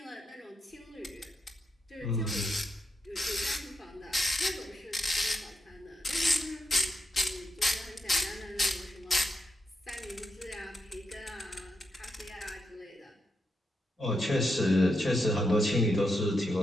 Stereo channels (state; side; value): normal; both; correlation 0.84